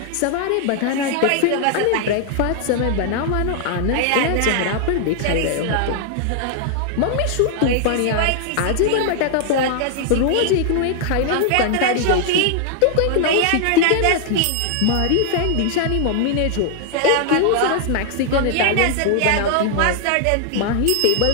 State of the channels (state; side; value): different; both; correlation 0.00